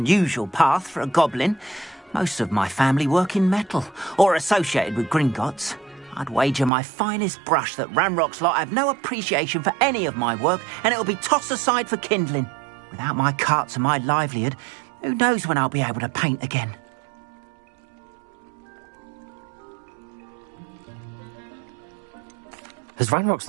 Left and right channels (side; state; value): left; drops out; at 6.7 s